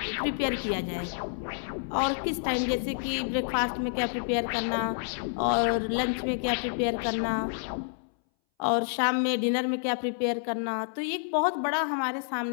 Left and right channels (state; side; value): silent; right; 59 dB below the other